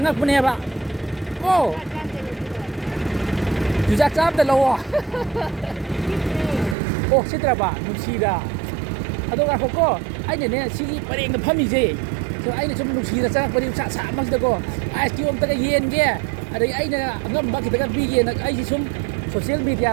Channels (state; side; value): drops out; left; at 6.8 s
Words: 봐 오 주작 짬다 러워 오 시들어봐 누시다 아도가 호고 아이네 시기 버랭가 팜이지 저 아이네 좀 누시다 짱각분이 차 막시다고 아이스 엄다가 이엔게 ꯑꯗꯒꯤ ꯑꯩꯅ ꯑꯉꯝꯕ ꯈꯤꯇꯪ ꯄꯤꯒꯦꯅ ꯑꯩꯁꯤ ꯁꯨꯝ ꯁꯣꯁꯤꯌꯦꯜ